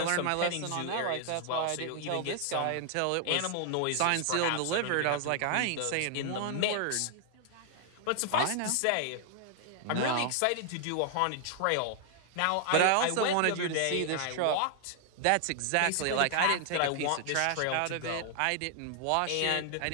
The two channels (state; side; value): different; both; correlation 0.00